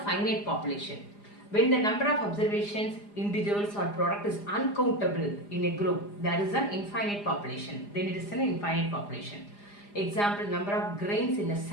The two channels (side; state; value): right; late; 4.9 ms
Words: finite population. When the number of observations, individuals or product is uncountable in a group, there is an infinite population. Then it is an infinite population. Example, number of grains in a